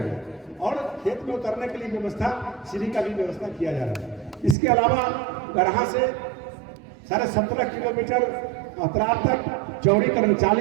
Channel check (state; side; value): drops out; left; at 4.5 s